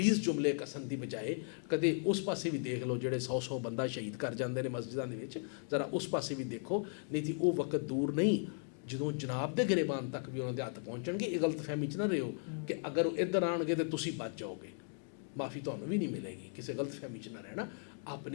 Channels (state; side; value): silent; right; 53 dB below the other